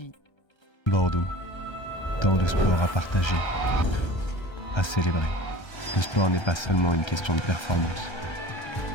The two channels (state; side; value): late; right; 1.3 ms